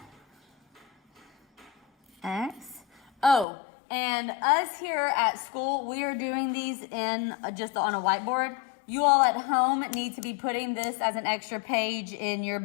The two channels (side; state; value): right; drops out; at 3.5 s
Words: x. Oh, and us here at school, we are doing these in just on a whiteboard. You all at home need to be putting this as an extra page in your